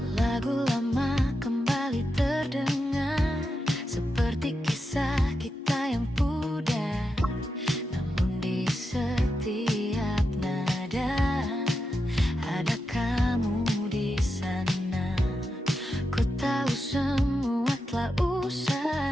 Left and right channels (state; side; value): normal; both; correlation 0.87